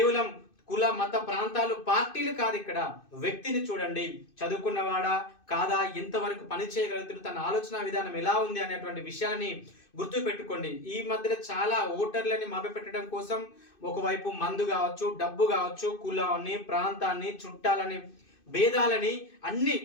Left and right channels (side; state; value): right; late; 2.6 ms